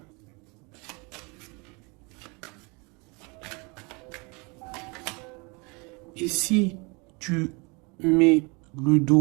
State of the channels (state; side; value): quieter; left; 29.6 dB